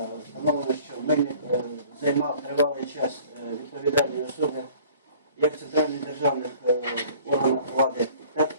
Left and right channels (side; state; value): both; inverted; correlation -0.51